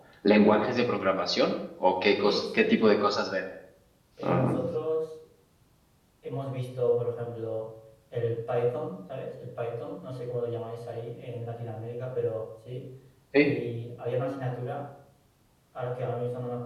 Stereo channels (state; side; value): identical; both; correlation 1.00